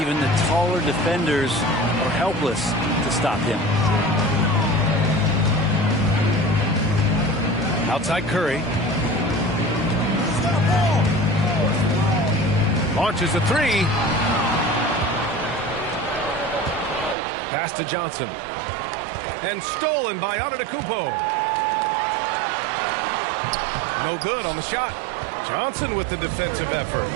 the taller defenders are helpless to stop him. Outside Curry. Launches a three. Pass to Johnson. And stolen by Antetokounmpo. No good on the shot. Johnson with the defensive effort.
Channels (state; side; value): drops out; left; at 17.2 s